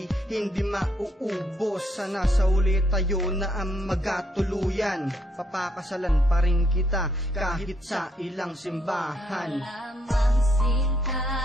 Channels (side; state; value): both; normal; correlation 0.73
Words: hindi mauubos. Sana sa uli tayo na ang magkatuluyan. Papakasalan pa rin kita kahit sa ilang simbahan. Lamang sinta,